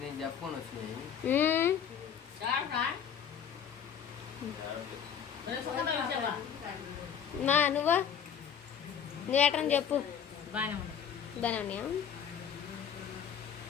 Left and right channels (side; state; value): right; quieter; 8.0 dB